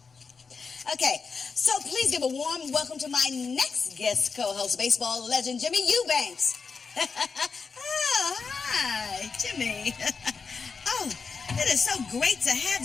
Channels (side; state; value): right; quieter; 5.2 dB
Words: Okay, so please give a warm welcome to my next guest co-host, baseball legend Jimmy Eubanks. Oh, hi, Jimmy. Oh, it is so great to have